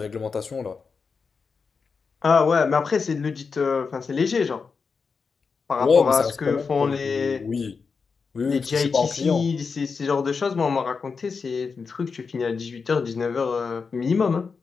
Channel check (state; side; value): quieter; right; 5.2 dB